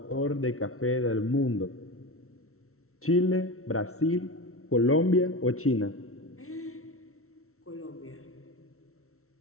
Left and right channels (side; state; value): right; late; 0.63 ms